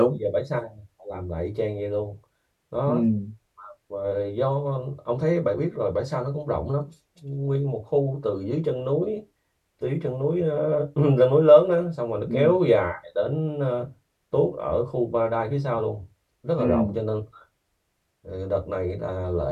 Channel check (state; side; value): identical; both; correlation 1.00